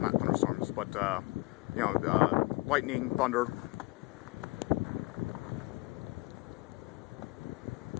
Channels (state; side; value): quieter; right; 22.5 dB